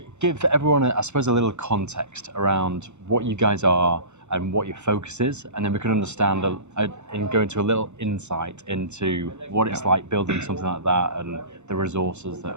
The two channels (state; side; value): late; left; 0.83 ms